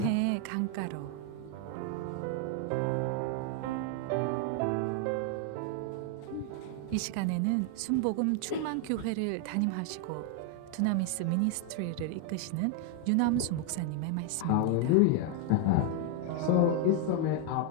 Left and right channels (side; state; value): both; different; correlation 0.00